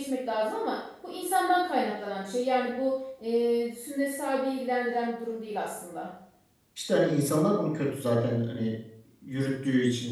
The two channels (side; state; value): both; identical; correlation 1.00